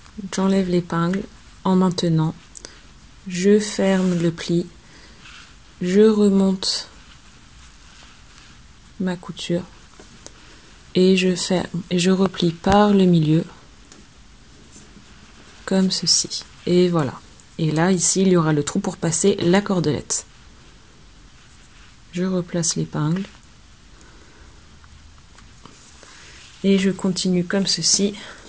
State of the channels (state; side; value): identical; both; correlation 1.00